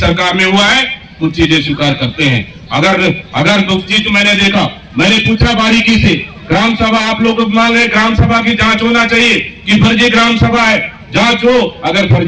में हुआ है कुछ चीजें स्वीकार करते हैं। अगर कुछ चीज मैंने देखा, मैंने पूछा बारीकी से, ग्राम सभा आप लोग मांग रहे, ग्राम सभा की जांच होना चाहिए कि फर्जी ग्राम सभा है, जांच हो। अगर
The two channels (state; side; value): identical; both; correlation 1.00